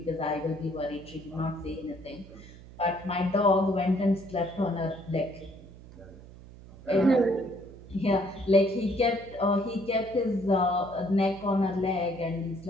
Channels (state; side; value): noise; right; hum, 18 dB below the sound